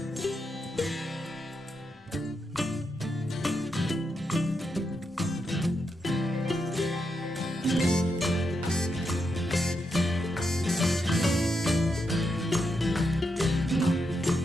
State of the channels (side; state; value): both; normal; correlation 0.83